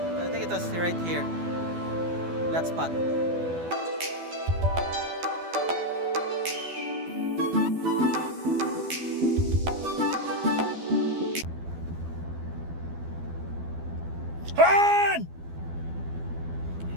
right here. That spot. Run!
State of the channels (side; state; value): left; late; 12 ms